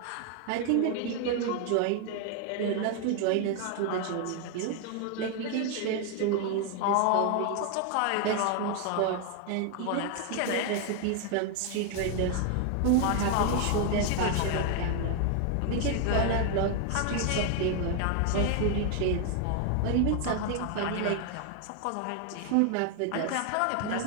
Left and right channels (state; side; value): different; both; correlation 0.01